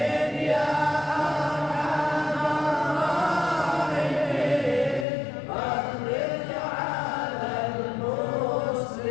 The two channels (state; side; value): drops out; right; at 5.1 s